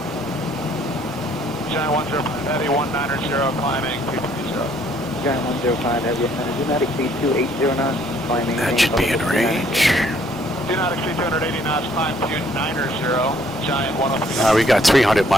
Giant 105 Heavy 190, climbing 230. Giant 105 Heavy, do not exceed 280 knots, climbing. That should be in range. Do not exceed 280 knots, climb 290, Giant 103. We got 300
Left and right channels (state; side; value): normal; both; correlation 0.63